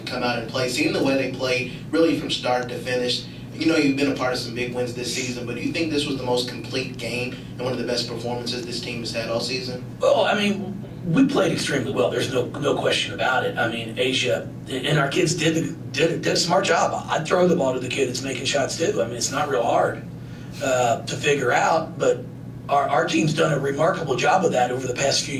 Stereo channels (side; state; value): both; identical; correlation 1.00